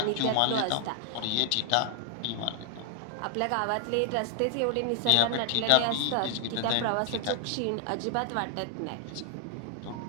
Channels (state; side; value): different; both; correlation 0.00